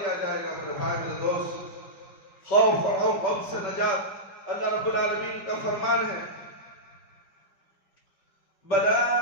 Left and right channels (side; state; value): right; late; 5.3 ms